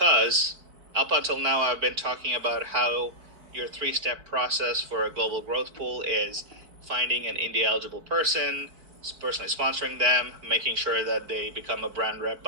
up until now, I've been talking about how your 3-step process for a global growth pool is finding an India eligible person, personally sponsoring them, making sure that they become a brand rep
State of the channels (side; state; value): left; late; 4.5 ms